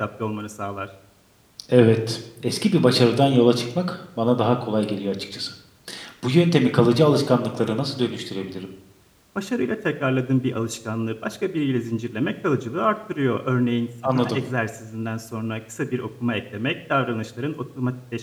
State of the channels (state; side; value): identical; both; correlation 1.00